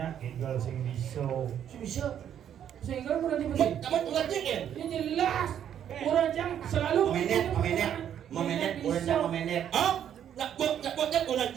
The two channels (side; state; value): left; quieter; 9.7 dB